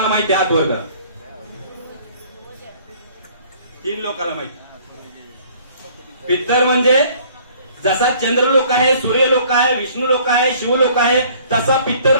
माहिती? हात वर करा. 3 लोकांना माहिती. पित्तर म्हणजे जसा चंद्रलोक आहे, सूर्यलोक आहे, विष्णू लोक आहे, शिवलोक आहे तसा पित्तर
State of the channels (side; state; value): both; inverted; correlation -0.56